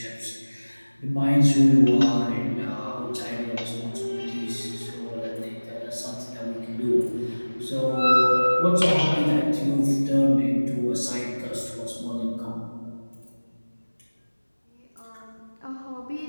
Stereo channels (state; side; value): inverted; both; correlation -1.00